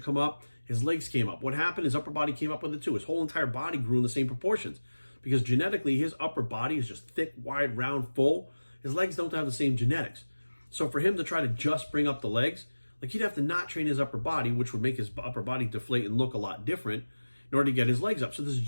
come up. His legs came up. What happened? His upper body came up with it too. His whole entire body grew in the same proportions because genetically his upper body is just thick, wide, round, full. His legs don't have the same genetics. So for him to try to just bring up the legs, like, he'd have to not train his upper body, which would make his upper body deflate and look a lot different in order to get his legs up. So there's a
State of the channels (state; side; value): inverted; both; correlation -1.00